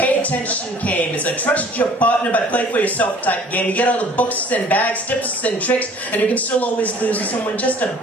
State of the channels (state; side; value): normal; both; correlation 0.52